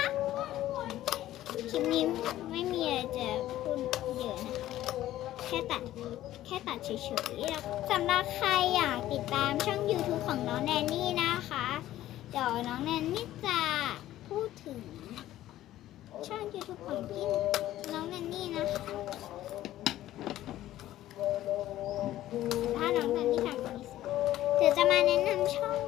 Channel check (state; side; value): quieter; right; 13.9 dB